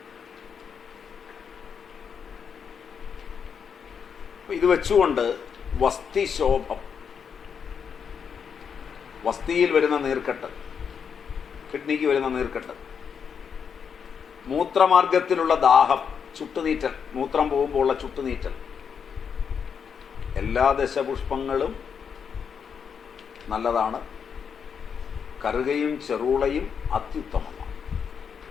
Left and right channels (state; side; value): quieter; right; 6.9 dB